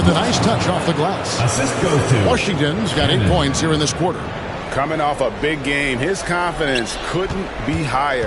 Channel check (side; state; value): both; identical; correlation 1.00